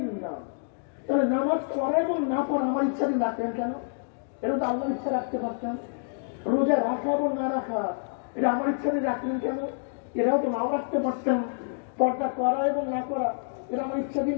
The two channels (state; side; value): silent; right; digital silence